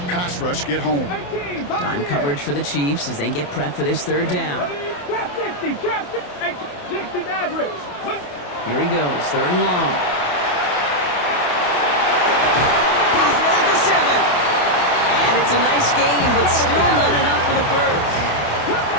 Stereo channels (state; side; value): late; right; 28 ms